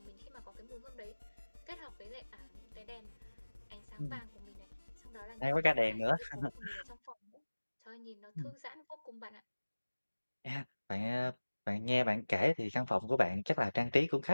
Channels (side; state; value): both; inverted; correlation -1.00